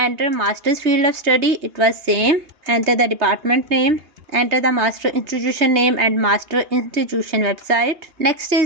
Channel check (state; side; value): late; left; 3.2 ms